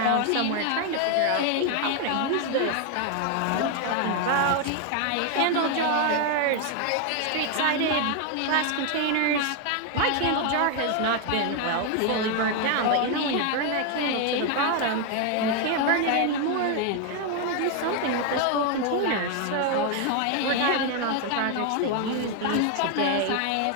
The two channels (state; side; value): different; both; correlation 0.01